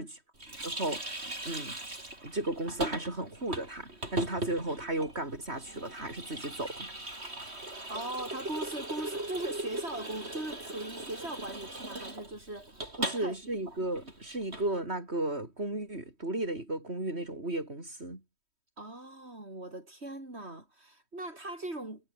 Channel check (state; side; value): late; left; 3.1 ms